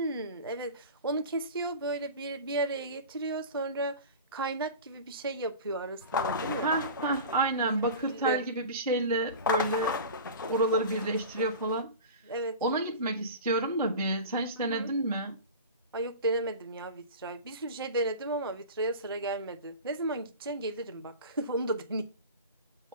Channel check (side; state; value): both; inverted; correlation -0.33